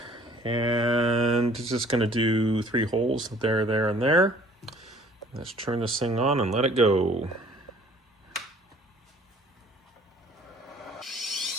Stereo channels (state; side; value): normal; both; correlation 0.54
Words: and just gonna do 3 holes there, there, and there. Let's turn this thing on and let it go.